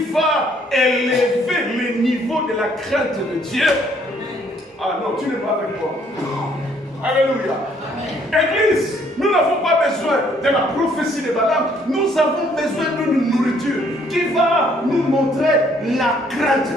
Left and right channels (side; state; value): both; normal; correlation 0.65